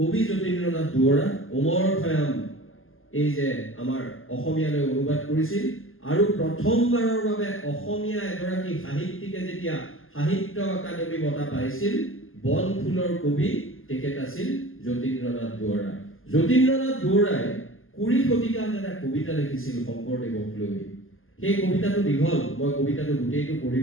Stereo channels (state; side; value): late; right; 0.59 ms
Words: যতীন্দ্ৰনাথ দুৱৰা অমৰ খয়াম এই যে আমাৰ অসমীয়ালৈ অনুবাদ কৰিছিল আৰু প্ৰথমবাৰৰ বাবে অসমীয়া এগৰাকী সাহিত্যিকে যেতিয়া সাহিত্য একাডেমী বঁটা পাইছিল বনফুলৰ কবি তেখেত আছিল যতীন্দ্ৰনাথ দুৱৰা যতীন্দ্ৰনাথ বৰুৱাই 20 শতিকাত এটা কবিতা লিখিছিল শংকৰদেৱক লৈ। সেই কবিতাটো দীঘল, মই কবিতাটো গোটেইটো